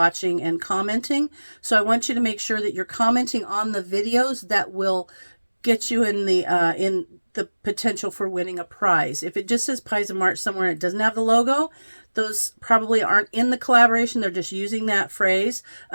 and commenting. So I want you to make sure that you're commenting on the videos that will get you in the potential for winning a prize. If it just says Pies of March somewhere and it doesn't have the logo, those probably aren't in the collaboration. They're just using that phrase.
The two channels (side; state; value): both; inverted; correlation -1.00